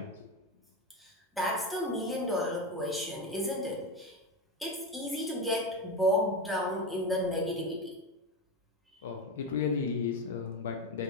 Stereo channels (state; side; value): normal; both; correlation 0.17